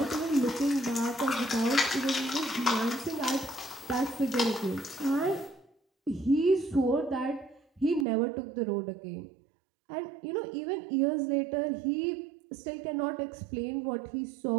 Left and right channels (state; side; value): drops out; left; at 8.1 s